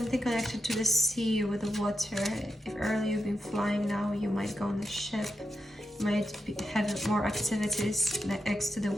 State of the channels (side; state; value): both; normal; correlation 0.87